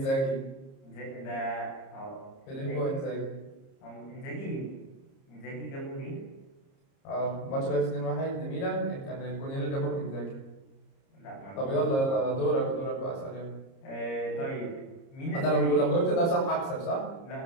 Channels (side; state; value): right; late; 30 ms